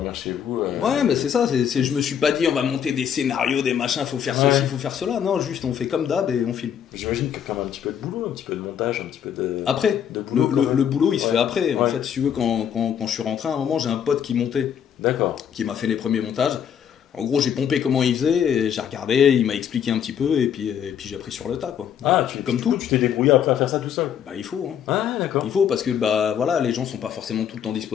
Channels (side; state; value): right; quieter; 8.7 dB